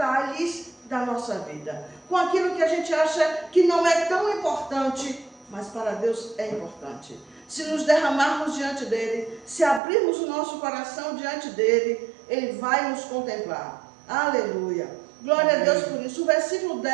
da nossa vida, com aquilo que a gente acha que não é tão importante, mas para Deus é importante. Se nos derramarmos diante dEle, se abrirmos o nosso coração diante dEle, Ele vai nos contemplar. Aleluia! Glória a Deus por isso. O versículo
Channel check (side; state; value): left; drops out; at 9.8 s